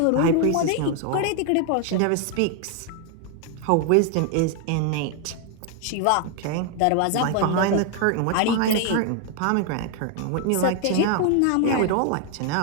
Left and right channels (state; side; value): different; both; correlation 0.01